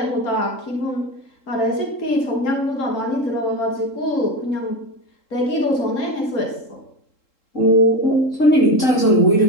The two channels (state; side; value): late; right; 3.7 ms